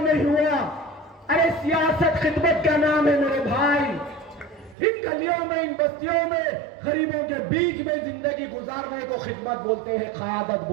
نہیں ہوا۔ ارے سیاست خدمت کا نام ہے میرے بھائی، ان گلیوں میں، ان بستیوں میں، غریبوں کے بیچ میں زندگی گزارنے کو خدمت بولتے ہیں، قیادت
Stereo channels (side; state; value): left; drops out; at 4.8 s